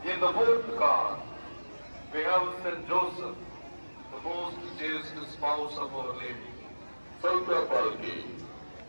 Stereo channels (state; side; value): inverted; both; correlation -1.00